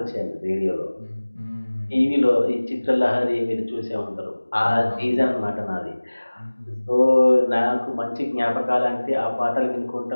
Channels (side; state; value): both; inverted; correlation -1.00